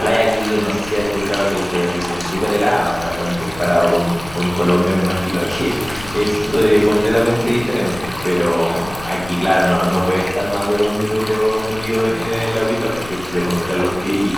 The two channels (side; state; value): left; noise; rumble, 16 dB below the sound